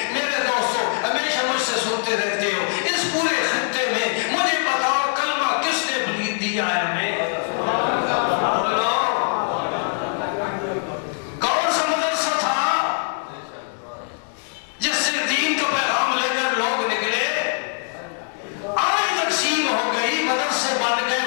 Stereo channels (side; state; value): right; silent; 64 dB below the other